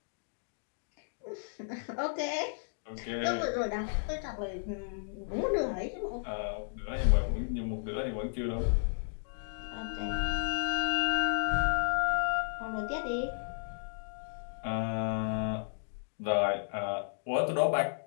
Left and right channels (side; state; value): right; silent; digital silence